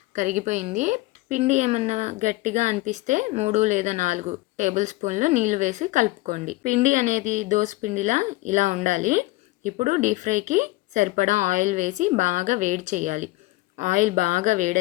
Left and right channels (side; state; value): right; quieter; 20.3 dB